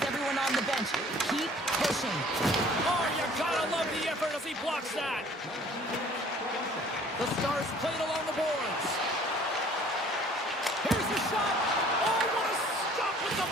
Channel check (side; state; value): both; normal; correlation 0.53